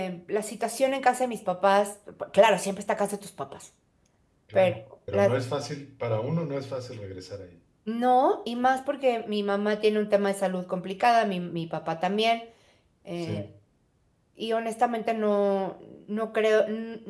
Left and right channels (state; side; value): identical; both; correlation 1.00